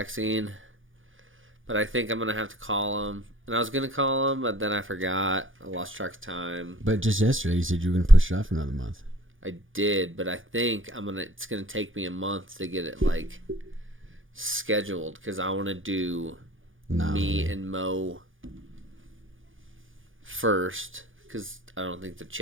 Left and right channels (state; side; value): late; left; 0.58 ms